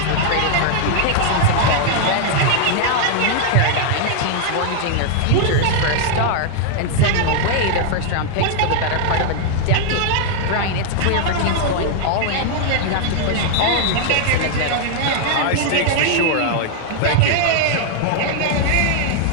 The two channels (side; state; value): both; different; correlation 0.00